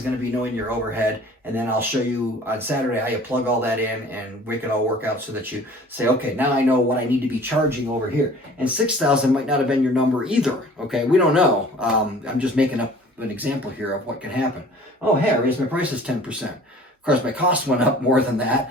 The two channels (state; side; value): normal; both; correlation 0.48